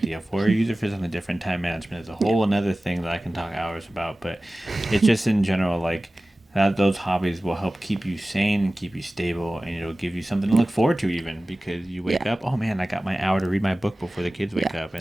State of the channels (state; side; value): normal; both; correlation 0.97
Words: for, or use it for something different. Time management is a whole another thing that I can talk hours about. But it's just in general, like those hobbies will help keep you sane and keep you stable, and it'll give you something to look forward to, even because you wake up. Oh man, I got my hour to read my book before the kids wake up.